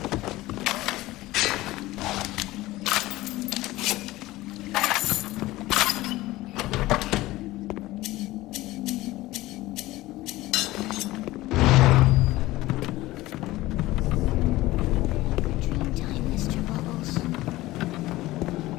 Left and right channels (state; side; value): quieter; right; 17.9 dB